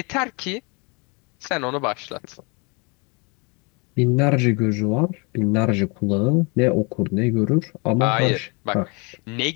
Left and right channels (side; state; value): right; quieter; 31.2 dB